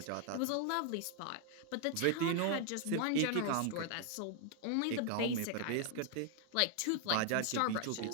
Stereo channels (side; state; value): both; different; correlation 0.00